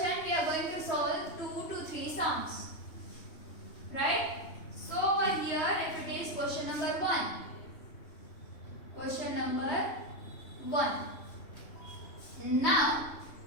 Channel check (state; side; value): late; right; 3.1 ms